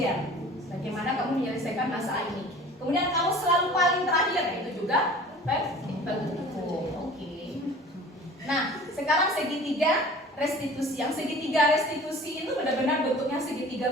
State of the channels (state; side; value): normal; both; correlation 0.44